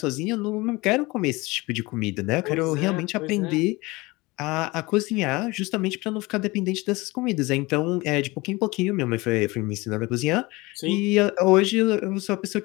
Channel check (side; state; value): right; quieter; 22.9 dB